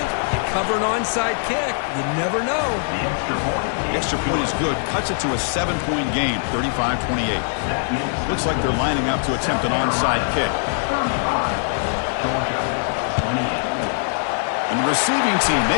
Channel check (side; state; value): right; silent; digital silence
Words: You cover an onside kick. You never know. The extra point is good. Cuts it to a 7-point game, 35-28. Looks like they're lining up to attempt an onside kick. And the receiving team